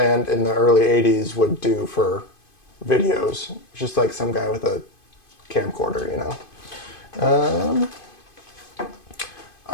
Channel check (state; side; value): late; right; 2.5 ms